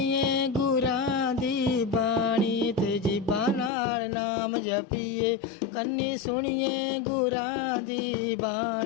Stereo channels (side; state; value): right; drops out; at 3.7 s